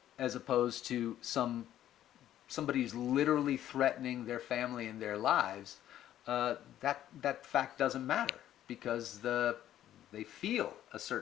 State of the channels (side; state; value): right; quieter; 12.0 dB